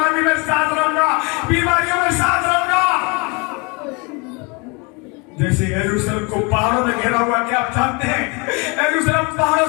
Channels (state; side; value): quieter; right; 30.0 dB